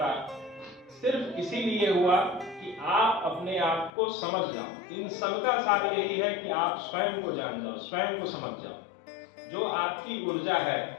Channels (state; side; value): drops out; right; at 3.9 s